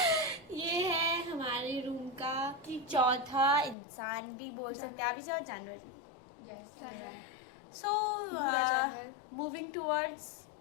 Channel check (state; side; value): drops out; right; at 3.8 s